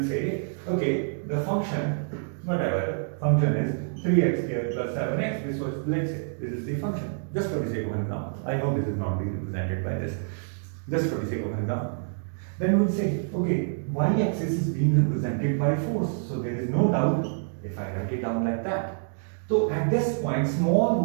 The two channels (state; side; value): silent; left; digital silence